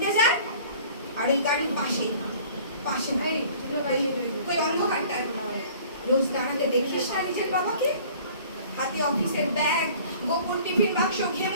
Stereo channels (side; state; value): both; inverted; correlation -0.50